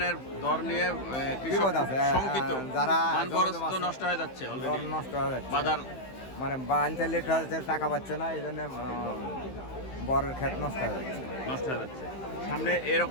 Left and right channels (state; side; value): late; right; 15 ms